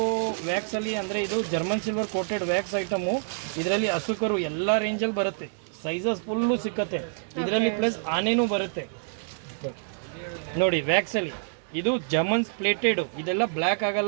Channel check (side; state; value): left; silent; digital silence